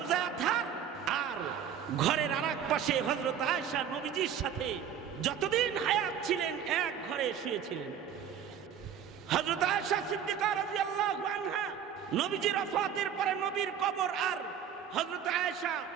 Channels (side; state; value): left; quieter; 8.5 dB